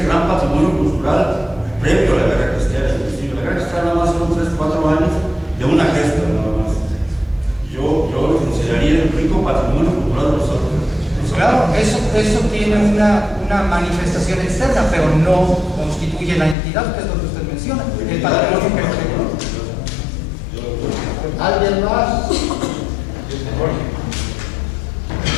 gran patrimonio cultural previo a la guerra cristera. Inclusive la guerra cristera nada más fueron 3-4 años de una gesta nada más. Yo lo consideraría el rico patrimonio cultural de los Altos. Claro, eso tiene una manifestación externa, pero no constituye la entidad, que es lo que usted menciona, el patrimonio que ¿Alguien más?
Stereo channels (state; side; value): drops out; right; at 16.6 s